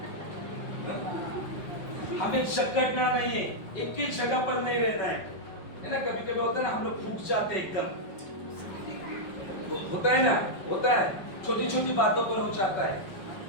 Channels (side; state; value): right; late; 5.4 ms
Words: हमें जकड़ना नहीं है, एक ही जगह पर नहीं रहना है ना। कभी कभी होता है ना, हम लोग फूक जाते हैं एकदम, होता है ना, होता है, छोटी छोटी बातों पर हो जाता है,